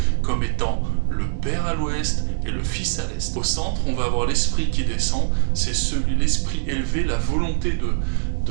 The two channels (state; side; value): silent; left; digital silence